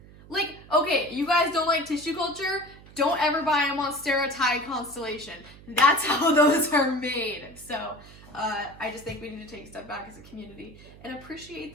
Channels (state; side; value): noise; right; hum, 21 dB below the sound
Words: Like, okay, you guys don't like tissue culture? Don't ever buy a Monstera constellation. That's how those are made. So I just think we need to take a step back as a community and appreciate